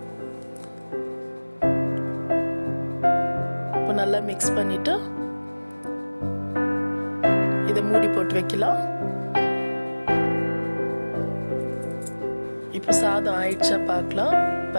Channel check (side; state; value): both; inverted; correlation -1.00